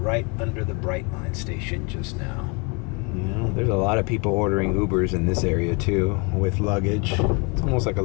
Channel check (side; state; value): right; quieter; 32.1 dB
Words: under the Brightline station just now. You know, there's a lot of people ordering Ubers in this area too, with luggage. It's almost like a